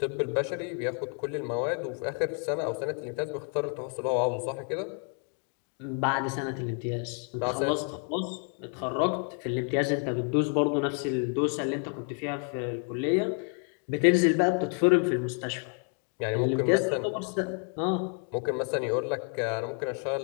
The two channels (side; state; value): right; quieter; 38.8 dB